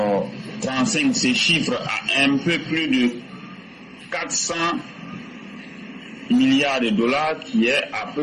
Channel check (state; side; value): identical; both; correlation 1.00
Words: 2031-2035 se chiffre à un peu plus de 400 milliards de dollars, qui est à